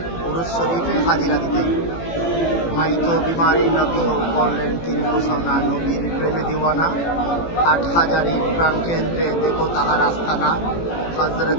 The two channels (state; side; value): late; right; 18 ms